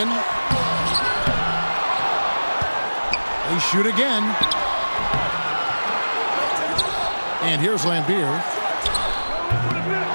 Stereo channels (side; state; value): both; inverted; correlation -1.00